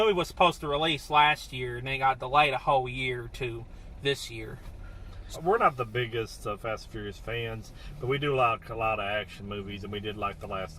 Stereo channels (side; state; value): both; identical; correlation 1.00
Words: was supposed to release last year, and it got delayed a whole year to this year. We're not the biggest Fast and Furious fans, but we do like a lot of action movies, and we did like the